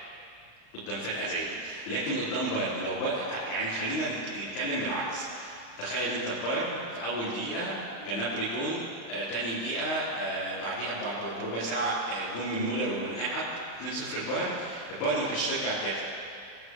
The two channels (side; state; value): right; late; 35 ms